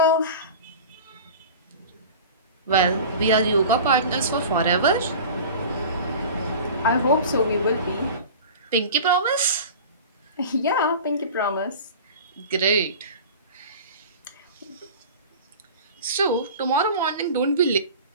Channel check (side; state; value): both; inverted; correlation -0.37